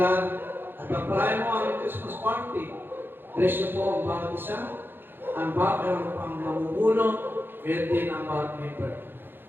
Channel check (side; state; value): left; late; 0.10 ms